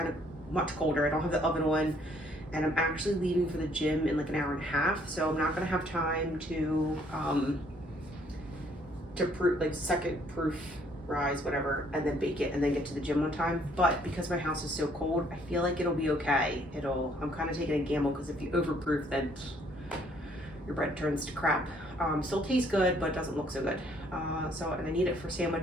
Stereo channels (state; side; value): normal; both; correlation 0.64